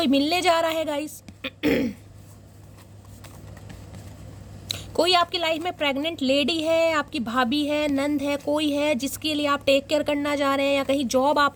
मिलने जा रहा है गाइस। कोई आपकी लाइफ में प्रेग्नेंट लेडी है, आपकी भाभी है, नंद है, कोई है जिसके लिए आप टेक केयर करना जा रहे हैं, या कहीं जॉब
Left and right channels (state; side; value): identical; both; correlation 1.00